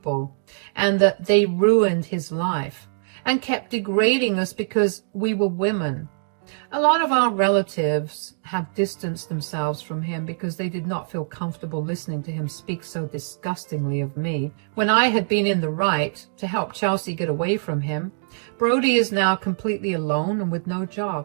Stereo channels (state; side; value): silent; left; digital silence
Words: and that they ruined his life, and kept degrading us because we were women. A lot of our relatives have distanced themselves from him because they did not feel comfortable listening to him speak so disgustingly of me. When I had been in the right to help Chelsea get away from him, Brody is now completely alone and with no